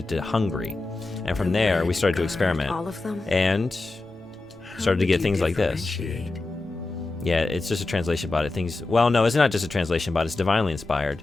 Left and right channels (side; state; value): right; quieter; 3.2 dB